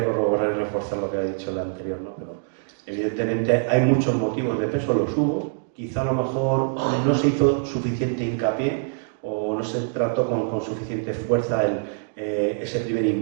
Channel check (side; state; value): left; silent; digital silence